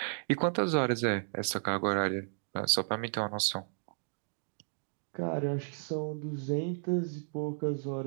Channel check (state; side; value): silent; left; digital silence